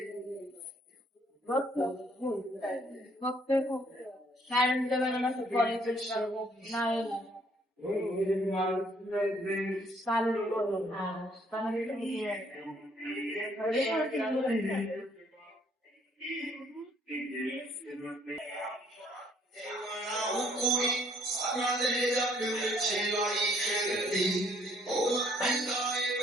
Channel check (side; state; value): both; normal; correlation 0.65